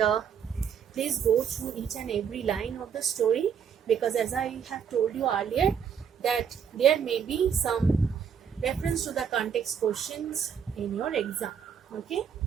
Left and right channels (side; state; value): left; quieter; 7.6 dB